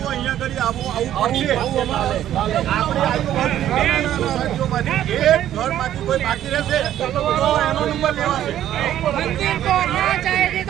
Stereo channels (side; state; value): left; quieter; 11.8 dB